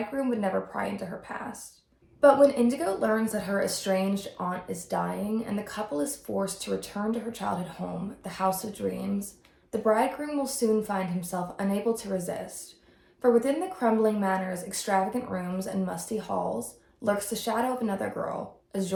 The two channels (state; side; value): identical; both; correlation 1.00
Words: would never pry into her past. But when Indigo learns that her estranged aunt is dying and the couple is forced to return to her childhood home, the House of Dreams, the bridegroom will soon find himself unable to resist. For within the crumbling manor's extravagant rooms and musty halls lurks the shadow of another girl,